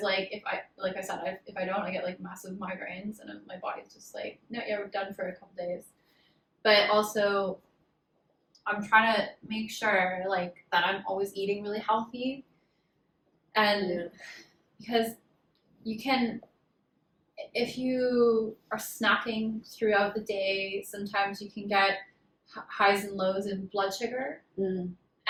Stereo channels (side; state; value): both; identical; correlation 1.00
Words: like if I don't, I get like massive migraines and my body's just like, no, we're done for a couple days. But also I'm trying to make sure like that I'm always eating really healthy, and because you can, if you are snacking throughout the day, sometimes you can get highs and lows in blood sugar.